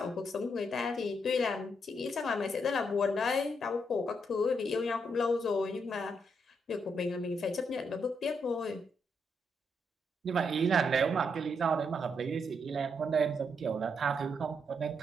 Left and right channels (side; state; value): both; normal; correlation 0.78